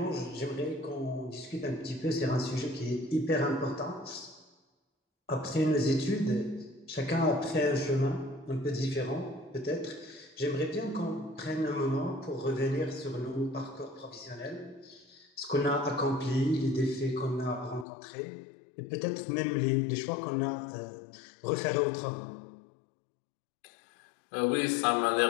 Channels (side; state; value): right; drops out; at 17.9 s